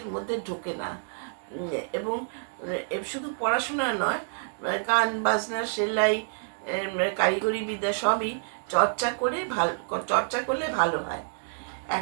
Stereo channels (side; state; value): left; silent; digital silence